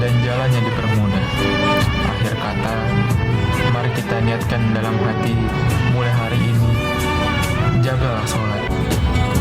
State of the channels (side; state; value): both; identical; correlation 1.00